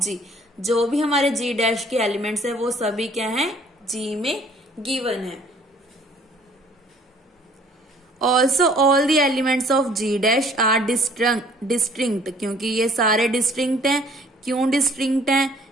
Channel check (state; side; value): normal; both; correlation 0.56